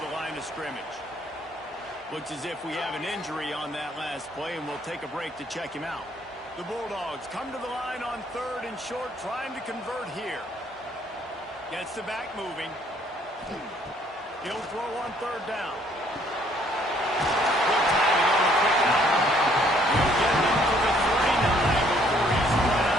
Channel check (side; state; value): both; normal; correlation 0.64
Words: the line of scrimmage. Looks as if we have an injury on that last play, and we'll take a break to check him out. The Bulldogs come to the line on 3rd and short, trying to convert here. Gets the back moving. He'll throw on 3rd down. Good timing on the quick out. He'll get it up to the 39 before he's run